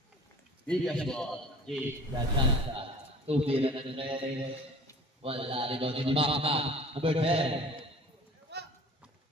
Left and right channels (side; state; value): both; normal; correlation 0.45